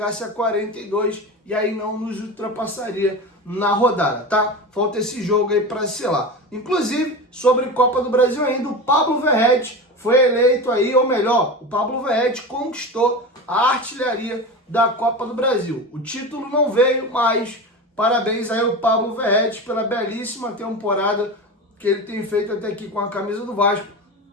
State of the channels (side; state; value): both; normal; correlation 0.26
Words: a 42 e aí não nos ultrapassaria na rodada, tá? Falta esse jogo aí para selar. Inclusive, sobre Copa do Brasil ainda, o Pablo Verratti foi eleito aí, ou melhor, o Pablo Verratti conquistou a artilharia da Copa do Brasil. O título não veio, mas parabéns aí ao Pablo Verratti pela belíssima temporada que ele tem feito até aqui com a camisa do Vasco.